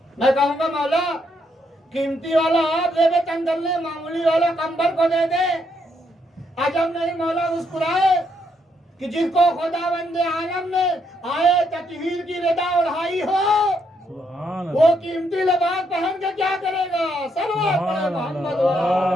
मैं कहूंगा मौला, कीमती वाला आप से वेतन कर ले, मामूली वाला कंबल को दे दे। अजब नहीं मौला मुस्कुराए कि जिसको खुदावंद आलम ने आए तकहीर की रिदा उड़ाई हो, वो कीमती लिबास पहन के क्या करेगा? सल्लल्लाहु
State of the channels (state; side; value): normal; both; correlation 0.75